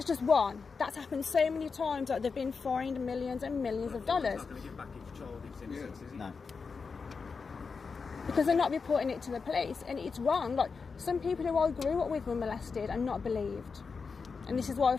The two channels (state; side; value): quieter; right; 5.0 dB